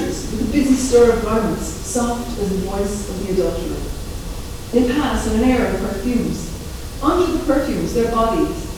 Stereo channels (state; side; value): identical; both; correlation 1.00